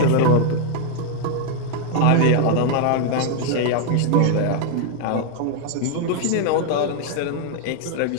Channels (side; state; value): both; different; correlation 0.00